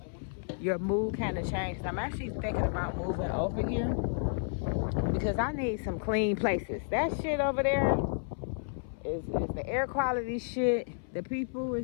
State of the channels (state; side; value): silent; right; 57 dB below the other